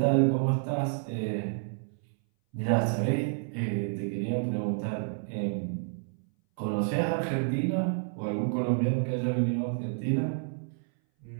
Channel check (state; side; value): silent; left; 58 dB below the other